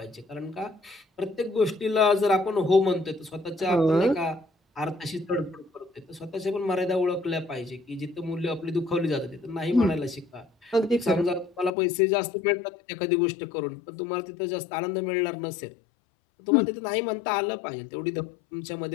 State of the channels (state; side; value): drops out; right; at 11.7 s